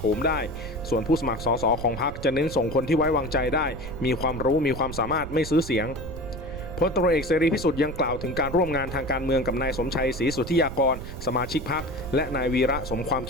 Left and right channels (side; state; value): right; noise; rumble, 10 dB below the sound